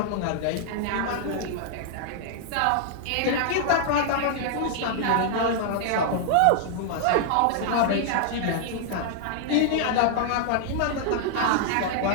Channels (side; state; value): both; different; correlation 0.00